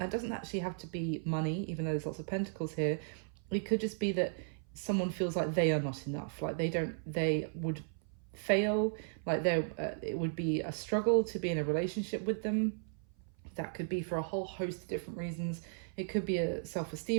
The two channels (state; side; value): silent; left; 54 dB below the other